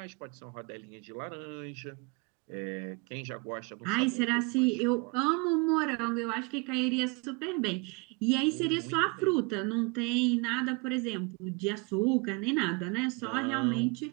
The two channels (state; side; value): quieter; left; 29.5 dB